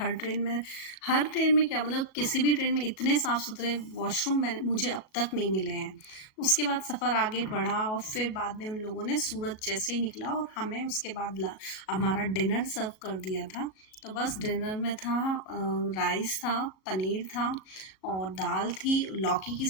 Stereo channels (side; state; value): right; late; 37 ms